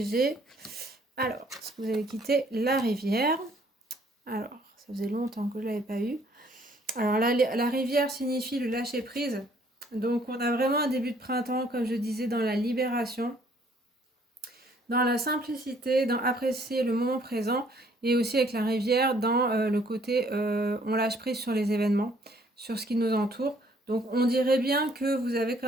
Alors, ce que vous allez quitter, la rivière. Alors, ça faisait longtemps que je ne l'avais pas eu. Alors, la rivière signifie le lâcher prise. Donc, on a vraiment un début de printemps, comme je disais, dans la libération, dans la simplicité, dans apprécier le moment présent, et aussi avec la rivière, dans le côté on lâche prise sur les événements, sur ce qui nous entoure. Donc on dirait bien que vous avez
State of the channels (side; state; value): both; normal; correlation 0.62